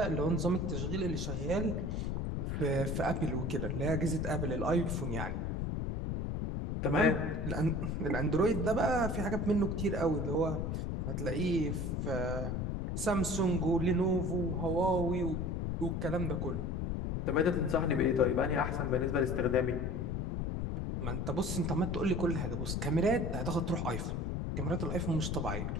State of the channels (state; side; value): noise; left; rumble, 1 dB below the sound